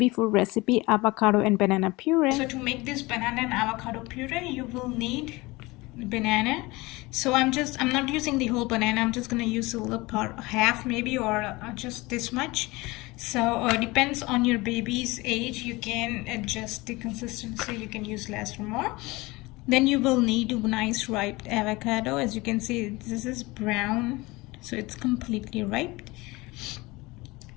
food recipe, avocado and banana puree. So to make this banana and avocado puree, you will need banana. So I'm not using the whole banana. I'm just gonna use a little part, half maybe, or just this much. So depends on your baby's age. You can adjust the consistency. You can use less or more. Then you will need a nice ripe avocado. As you can see, this is brown, so it's completely ripe.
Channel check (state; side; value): quieter; right; 22.4 dB